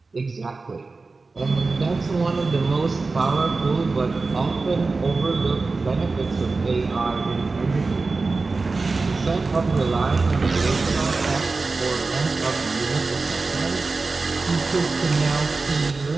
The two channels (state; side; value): quieter; left; 3.9 dB